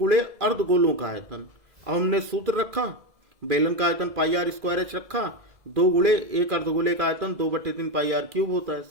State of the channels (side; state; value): left; late; 2.4 ms